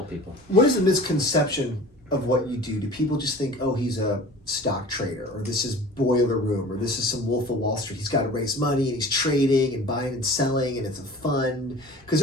people. What is the misconception of what you do? Do people just think, oh, he's a stock trader, or this is Boiler Room, or this is some Wolf of Wall Street? He's got to raise money and he's trading and buying and selling and it's a fund? Because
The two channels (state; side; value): normal; both; correlation 0.42